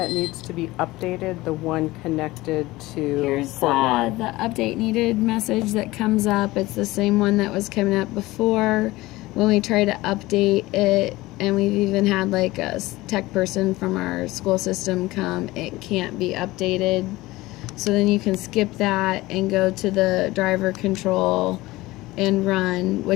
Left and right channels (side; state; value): right; quieter; 19.1 dB